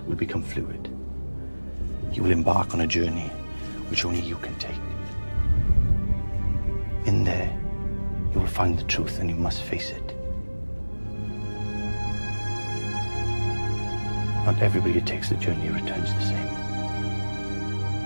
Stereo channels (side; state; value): both; inverted; correlation -1.00